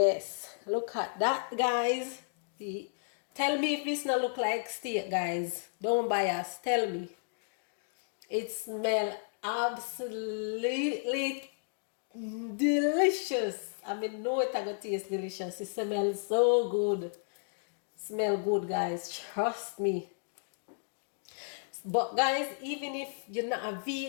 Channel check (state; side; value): silent; right; digital silence